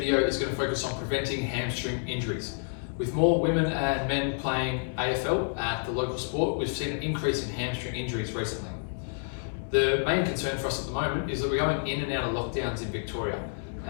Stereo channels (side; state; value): right; silent; digital silence